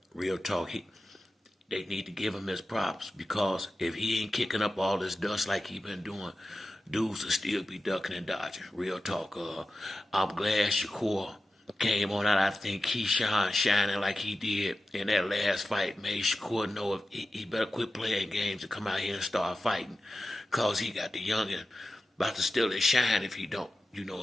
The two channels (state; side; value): normal; both; correlation 0.93